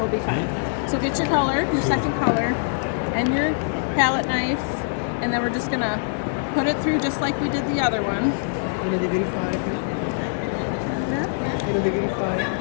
be fine. So get your color, your second color, and your palette knife, and then we're just going to put it through just like we did the other one.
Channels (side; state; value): right; silent; digital silence